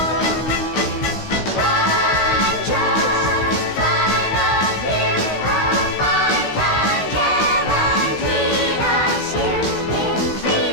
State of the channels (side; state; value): right; late; 16 ms